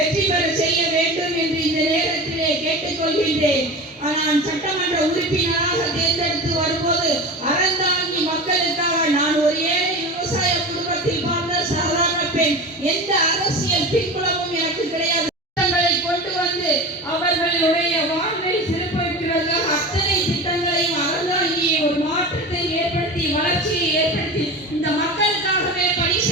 பெற செய்ய வேண்டும் என்று இந்த நேரத்திலே கேட்டுக்கொள்கின்றேன். நான் சட்டமன்ற உறுப்பினராக தேர்ந்தெடுத்து வரும்போது அறந்தாங்கி மக்களுக்காக நான் ஒரு ஏழை விவசாய குடும்பத்தில் வாழ்ந்த சாதாரண பெண். எந்த அரசியல் பின்புலமும் எனக்கு கிடையாது. திட்டங்களை கொண்டு வந்து அவர்களுடைய வாழ்வை சிறப்பிப்பதற்காக அத்தனை திட்டங்களையும் அறந்தாங்கி ஒரு மாற்றத்தை ஏற்படுத்தி, வளர்ச்சியை ஏற்படுத்தி இந்த மக்களுக்காகவே பணி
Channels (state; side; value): normal; both; correlation 0.30